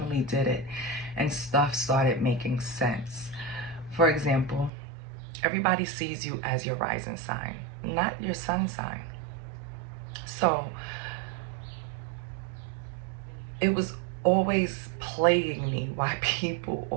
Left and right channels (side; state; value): left; drops out; at 4.7 s